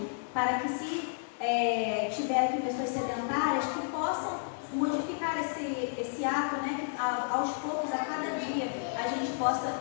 para que se tiver aqui pessoas sedentárias que possam modificar esse ato, né, que aos poucos, a cada dia, a gente possa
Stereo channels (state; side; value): silent; right; digital silence